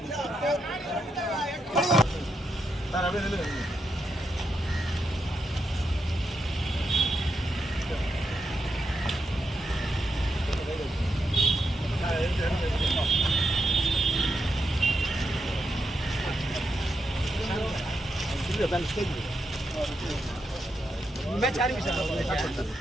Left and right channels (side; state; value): both; normal; correlation 0.84